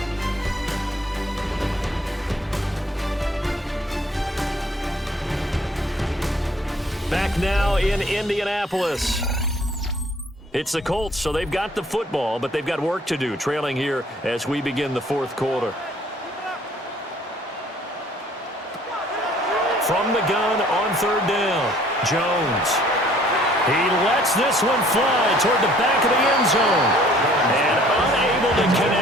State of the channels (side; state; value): both; normal; correlation 0.58